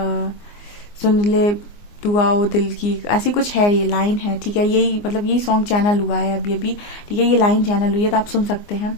सुन ले दुआ वो दिल की, ऐसी कुछ है, ये लाइन है, ठीक है। यही मतलब यही सॉन्ग चैनल हुआ है अभी अभी, ठीक है, ये लाइन चैनल हुई है, तो आप सुन सकते हैं,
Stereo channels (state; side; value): late; right; 24 ms